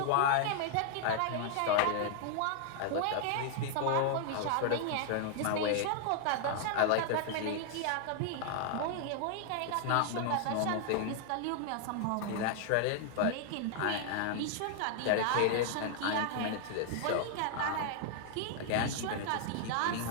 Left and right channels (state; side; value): different; both; correlation 0.00